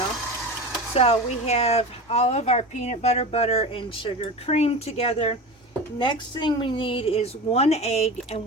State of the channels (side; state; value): both; normal; correlation 0.29